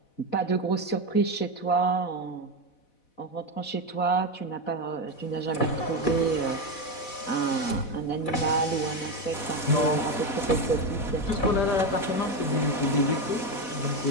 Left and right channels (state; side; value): late; right; 4.1 ms